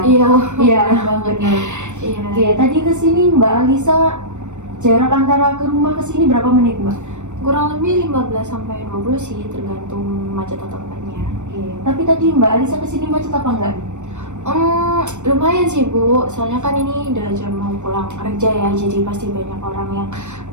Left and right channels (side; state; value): left; late; 0.84 ms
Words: Iya, Iya banget. benar. Iya. Oke, tadi kesini Mbak Alisa jarak antara ke rumah ke sini berapa menit Mbak? Kurang lebih 15 sampai 20 sih, tergantung macet atau enggaknya. Oke, tapi tadi Mbak Alisa kesini macet apa enggak? Lumayan sih Bu, soalnya kan ini udah jam mau pulang kerja ya, jadi pasti banyak orang yang